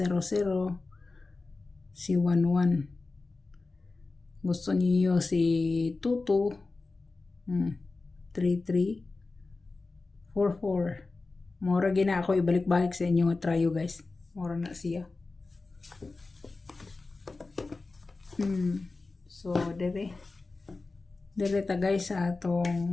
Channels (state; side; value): quieter; right; 3.6 dB